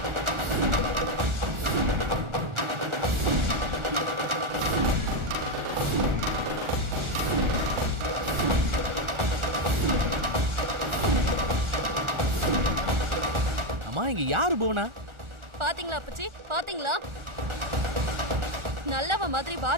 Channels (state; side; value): late; left; 1.4 ms